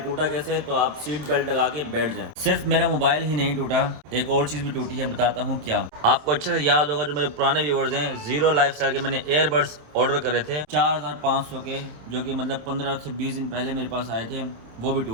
कैसे है, तो आप सीट बेल्ट लगा के बैठ जाएं। सिर्फ मेरा मोबाइल ही नहीं टूटा, एक और चीज भी टूटी है, बताता हूँ क्या। आपको अच्छे से याद होगा, जो मेरे पुराने व्यूअर्स हैं, जीरो लाइफस्टाइल के मैंने एयरबड्स ऑर्डर करे थे 4500 के, जो कि मतलब 15 से 20 दिन पहले मेरे पास आए थे, वो भी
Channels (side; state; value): left; late; 27 ms